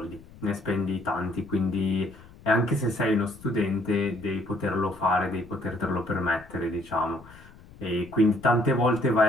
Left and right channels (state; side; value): noise; left; rumble, 22 dB below the sound